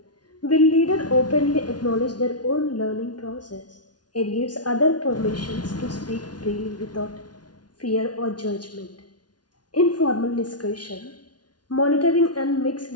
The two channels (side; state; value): right; late; 0.69 ms